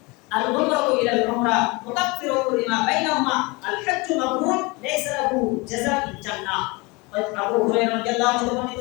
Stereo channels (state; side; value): quieter; right; 26.0 dB